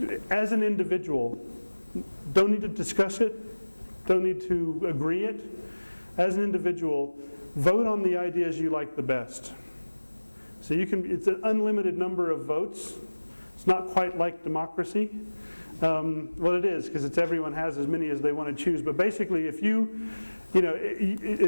as an individual, don't need to discuss it, don't need to agree it. As an individual, vote on the ideas you like the best. So it's an unlimited number of votes. It's not quite like democracy. Well, it is, because everyone has as many as they want to choose. But basically, if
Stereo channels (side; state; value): both; inverted; correlation -1.00